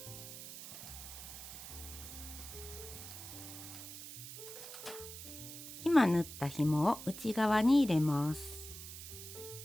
今縫った紐を内側に入れます。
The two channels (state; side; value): noise; right; hiss, 11 dB below the sound